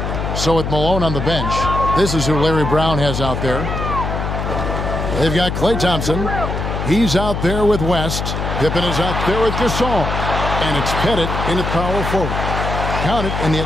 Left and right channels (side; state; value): left; noise; hum, 3 dB below the sound